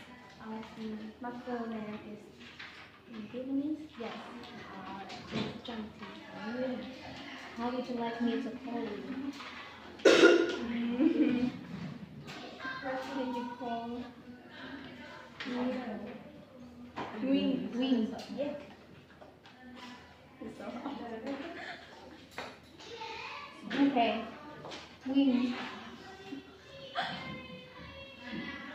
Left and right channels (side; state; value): both; identical; correlation 1.00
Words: My full name is Vietnamese. Yes. It's Junti. How would you like me to call you? What can you call Wing. Wing. Yeah. So, Okay. Wing.